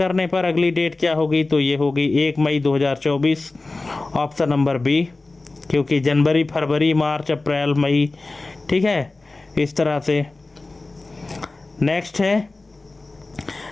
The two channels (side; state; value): right; quieter; 3.3 dB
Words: पर अगली डेट क्या होगी, तो ये होगी 1 मई 2024, ऑप्शन नंबर बी, क्योंकि जनवरी, फरवरी, मार्च, अप्रैल, मई, ठीक है, इस तरह से। नेक्स्ट है,